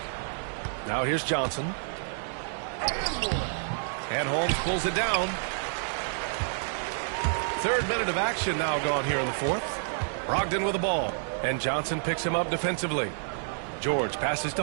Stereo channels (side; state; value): left; silent; digital silence